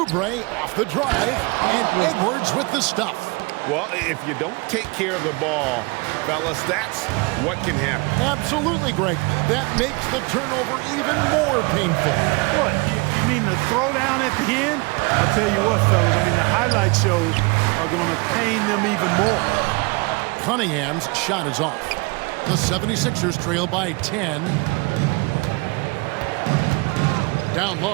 off the drive. And Edwards with the stuff. Well, if you don't take care of the ball, fellas, that's what can happen. Absolutely, Greg. That makes the turnover even more painful. What, you mean the throwdown at the end? I'll tell you what, fellas, I mean, the highlight shows are going to pain them even more. Cunningham's shot is off. The 76ers trail by 10. Down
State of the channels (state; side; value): quieter; left; 27.8 dB